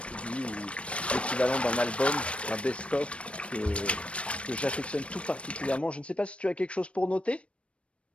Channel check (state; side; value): late; right; 0.061 ms